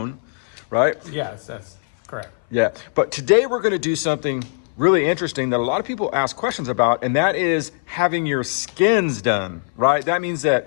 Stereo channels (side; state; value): right; silent; 60 dB below the other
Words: right? Yes, that's correct. Yeah, but today we're going to do something really interesting that a lot of people ask questions about, and that is having your skins done, right? That means that